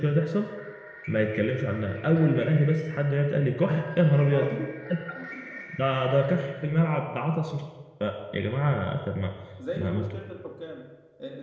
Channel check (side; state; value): both; identical; correlation 1.00